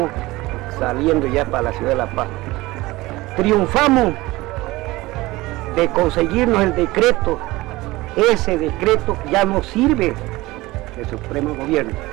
saliendo ya para la ciudad de La Paz. Triunfamos de conseguirnos el decreto. Ese decreto ya no sirve del Supremo Gobierno.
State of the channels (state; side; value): quieter; left; 19.8 dB